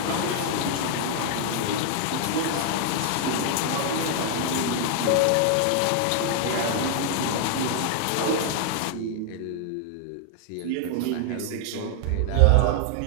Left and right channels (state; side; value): different; both; correlation 0.00